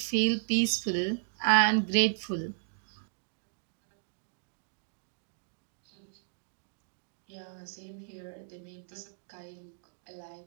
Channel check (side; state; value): left; silent; digital silence